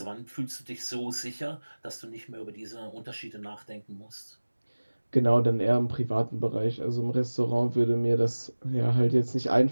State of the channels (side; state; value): both; inverted; correlation -1.00